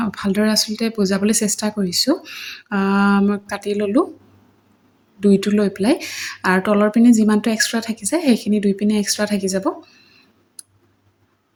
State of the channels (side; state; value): both; identical; correlation 1.00